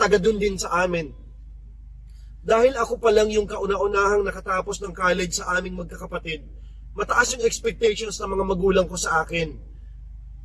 doon din sa amin. Dahil ako pa lang yung kauna-unahang nakatapos ng college sa aming magkakapatid, mataas yung expectations ng mga magulang ko sa akin.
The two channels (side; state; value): both; identical; correlation 1.00